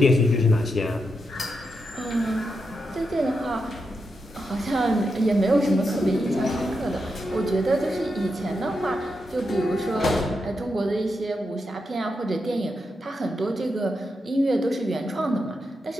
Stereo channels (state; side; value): normal; both; correlation 0.86